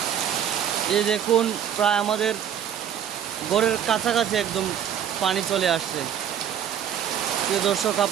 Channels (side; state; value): left; quieter; 9.3 dB